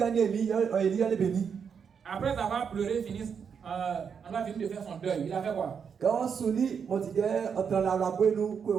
Après avoir pleuré, on a fini de faire son deuil. Il a fait quoi?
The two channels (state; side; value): quieter; left; 6.8 dB